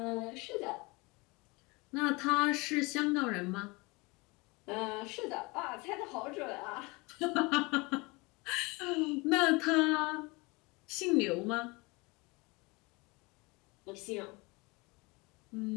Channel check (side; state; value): right; quieter; 25.9 dB